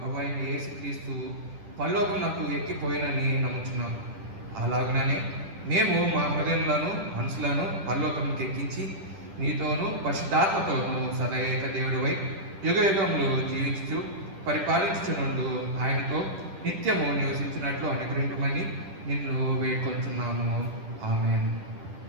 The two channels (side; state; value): left; late; 10 ms